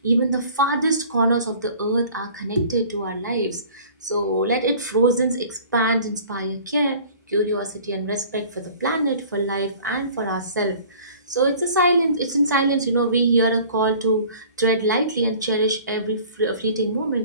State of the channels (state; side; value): inverted; both; correlation -0.48